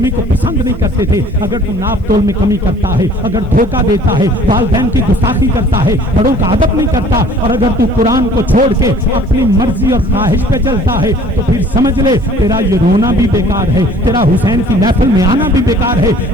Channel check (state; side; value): normal; both; correlation 0.52